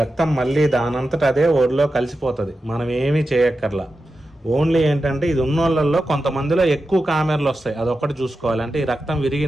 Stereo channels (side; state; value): both; normal; correlation 0.91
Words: మళ్ళీ దానంతట అదే ఒడిలో కలిసిపోతుంది. మనం ఏమీ చేయక్కర్లా. ఓన్లీ ఏంటంటే ఇది ఉన్నోళ్ళల్లో కొంతమందిలో ఎక్కువ కామెర్లు వస్తాయి, అదొక్కటి చూసుకోవాలి. అంటే ఈ రక్తం